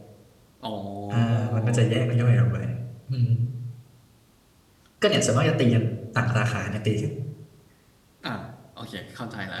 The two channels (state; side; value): identical; both; correlation 1.00